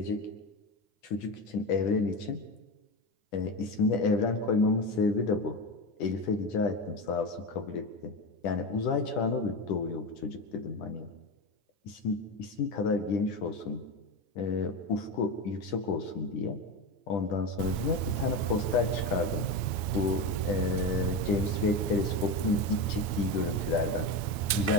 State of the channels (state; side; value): late; right; 9.0 ms